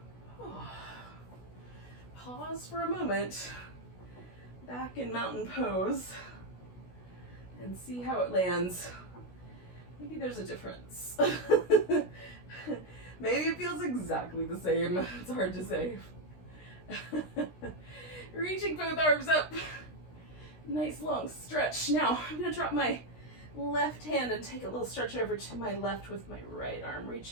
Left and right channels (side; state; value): right; late; 16 ms